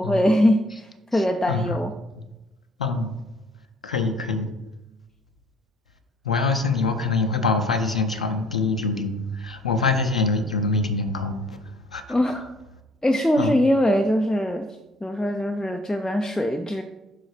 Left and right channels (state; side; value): normal; both; correlation 0.60